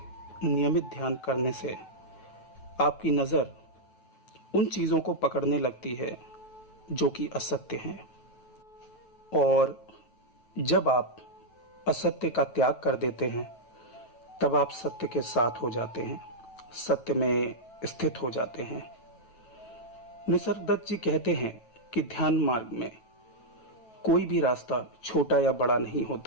नियमित ध्यान करने से आपकी नजर उन चीजों को पकड़ने लगती है जो कि असत्य हैं, और जब आप असत्य का त्याग कर देते हैं तब आप सत्य के साथ हो जाते हैं, सत्य में स्थित हो जाते हैं। निसर्गदत्त जी कहते हैं कि ध्यान मार्ग में कोई भी रास्ता छोटा या बड़ा नहीं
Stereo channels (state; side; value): late; right; 9.1 ms